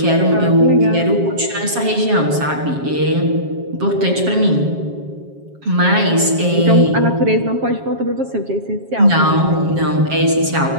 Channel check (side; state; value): left; late; 7.3 ms